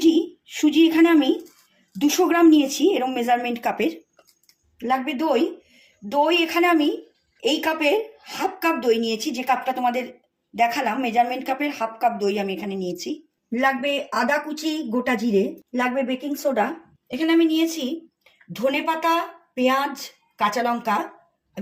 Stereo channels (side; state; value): both; identical; correlation 1.00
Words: সুজি এখানে আমি 200 গ্রাম নিয়েছি, এরকম মেজারমেন্ট কাপের। লাগবে দই। দই এখানে আমি এই কাপের হাফ কাপ দই নিয়েছি, যে কাপটা তোমাদের দেখালাম মেজারমেন্ট কাপের হাফ কাপ দই আমি এখানে নিয়েছি। লাগবে আদা কুচি, গোটা জিরে। লাগবে বেকিং সোডা। এখানে আমি নিয়েছি ধনেপাতা, পেঁয়াজ, কাঁচা লঙ্কা